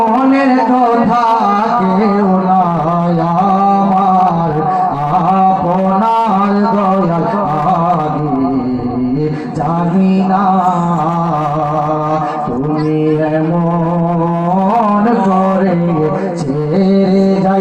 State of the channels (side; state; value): both; identical; correlation 1.00